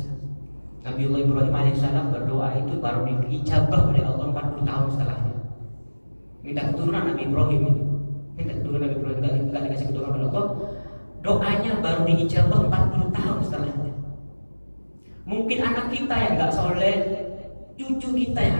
Nabi Allah Ibrahim alaihissalam berdoa itu baru diijabah oleh Allah 40 tahun setelahnya. Minta keturunan Nabi Ibrahim itu, nggak dikasih keturunan oleh Allah. Doanya baru diijabah 40 tahun setelahnya. Mungkin anak kita yang nggak soleh, cucu kita yang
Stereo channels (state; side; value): inverted; both; correlation -1.00